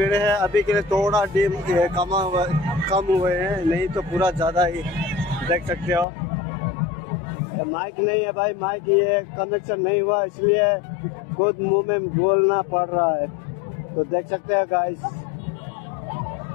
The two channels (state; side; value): drops out; right; at 6.1 s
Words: है। अभी के लिए थोड़ा कम हुए हैं, नहीं तो पूरा ज़्यादा ही। देख सकते हो, माइक नहीं है भाई, माइक ये कनेक्शन नहीं हुआ, इसलिए खुद मुंह में बोलना पड़ रहा है। तो देख सकते हैं गाइस,